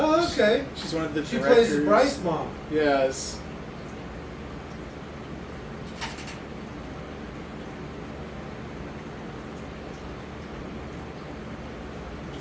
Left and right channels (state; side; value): identical; both; correlation 1.00